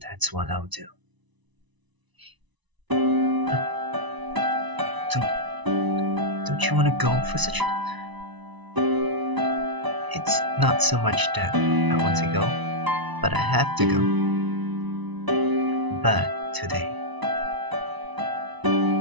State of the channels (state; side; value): late; left; 1.0 ms